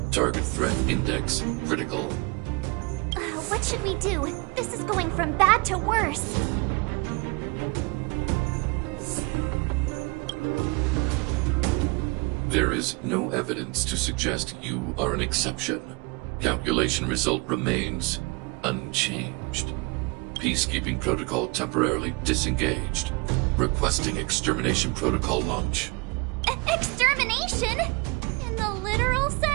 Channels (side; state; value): left; quieter; 28.4 dB